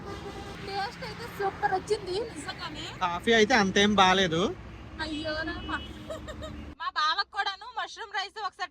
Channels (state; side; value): identical; both; correlation 1.00